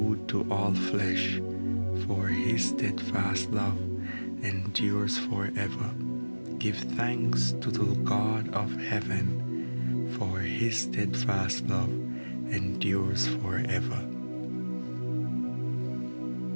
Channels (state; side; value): inverted; both; correlation -1.00